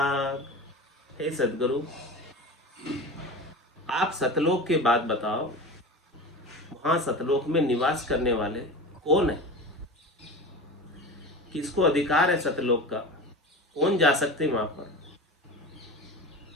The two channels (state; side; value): normal; both; correlation 0.30